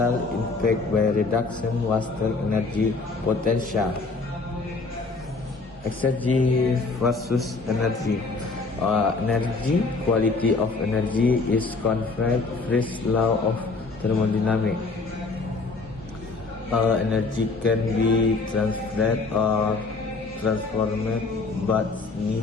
impact by reduction wasted energy potential. Exergy versus energy. Energy, quality of energy is conferred first law of thermodynamics. Energy can be transferred or transformed, but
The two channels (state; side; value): quieter; right; 3.9 dB